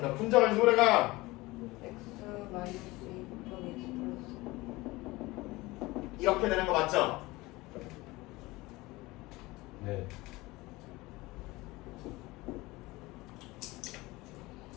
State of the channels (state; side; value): quieter; right; 20.9 dB